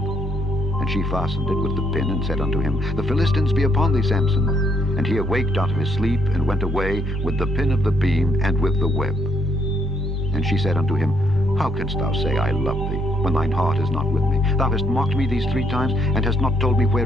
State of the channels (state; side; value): normal; both; correlation 0.71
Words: she fastened it with the pin, and said unto him, The Philistines be upon thee, Samson. And he awaked out of his sleep, and went away with the pin of the beam, and with the web. And she said unto him, How canst thou say, I love thee, when thine heart is not with me? Thou hast mocked me these 3 times, and hast not told me